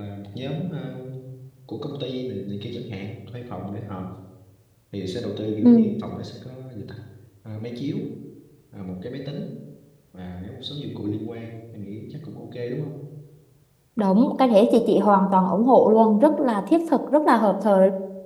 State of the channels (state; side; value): identical; both; correlation 1.00